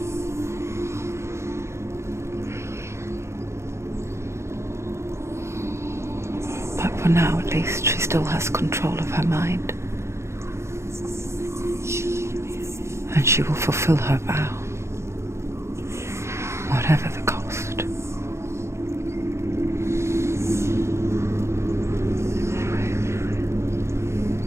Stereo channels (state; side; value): late; left; 0.13 ms